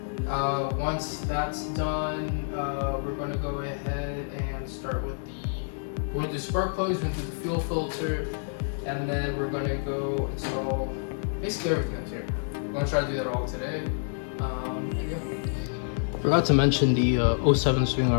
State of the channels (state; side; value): silent; right; digital silence